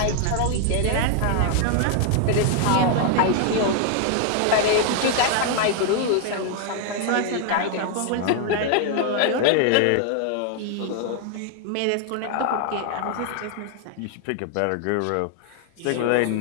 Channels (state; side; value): different; both; correlation 0.00